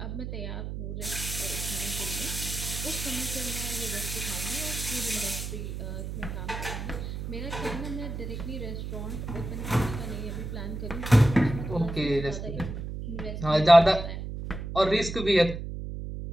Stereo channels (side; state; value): right; noise; hum, 6 dB below the sound